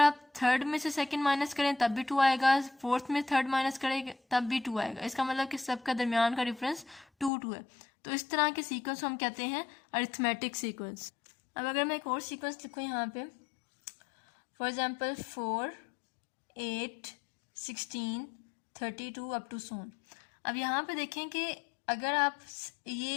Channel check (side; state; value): right; drops out; at 7.3 s